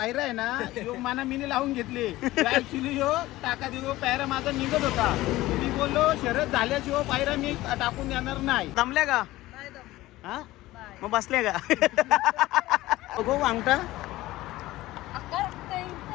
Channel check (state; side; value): quieter; right; 17.3 dB